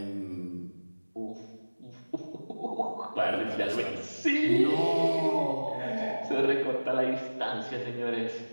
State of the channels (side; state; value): both; inverted; correlation -1.00